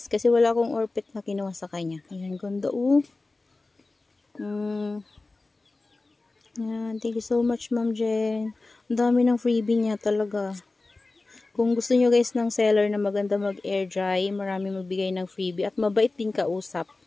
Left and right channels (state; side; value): quieter; right; 3.3 dB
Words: Kasi wala akong orpet na kinuha sa kanya. Ayan, ganda oh. Ayan, thank you so much Ma'am Jen. Ang dami ng freebie niya talaga. Kung gusto nyo guys ng seller na maganda mag-air dry, marami magbigay ng freebie. At mabait din kausap.